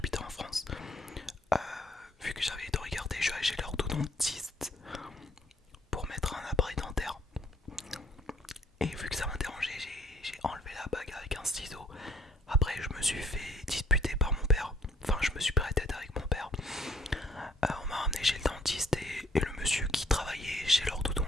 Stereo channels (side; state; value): both; normal; correlation 0.63